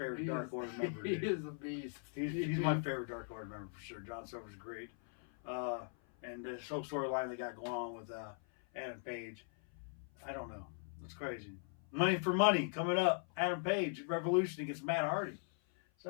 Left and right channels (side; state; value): right; silent; 51 dB below the other